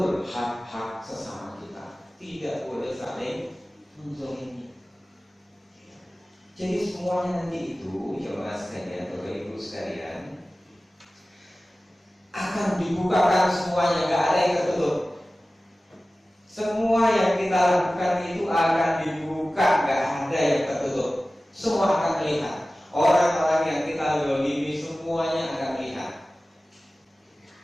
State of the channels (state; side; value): normal; both; correlation 0.97